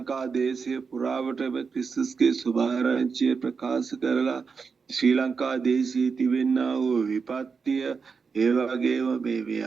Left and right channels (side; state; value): left; quieter; 5.4 dB